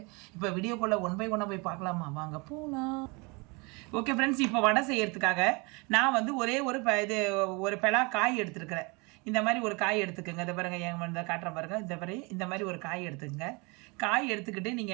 இப்போ வீடியோக்குள்ளே ஒன் பை ஒன்னாக போய் பார்க்கலாமா? வாங்க போகலாம். ஓகே ஃப்ரெண்ட்ஸ், இப்போ வடை செய்யறதுக்காக நான் வந்து ஒரே ஒரு பலா காய் எடுத்துருக்கிறேன். இந்த மாதிரி ஒரு காய் எடுத்துக்கோங்க. இதை பாருங்கள், என் வந்து காட்டுற பாருங்க. இந்த மாதிரி ஒரு காய் எடுத்துக்கங்க. காய் எடுத்துக்கிட்டு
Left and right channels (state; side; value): quieter; left; 28.7 dB